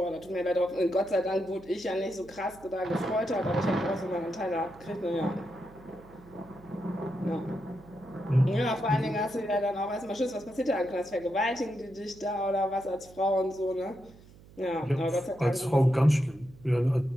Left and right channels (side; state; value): right; noise; hum, 23 dB below the sound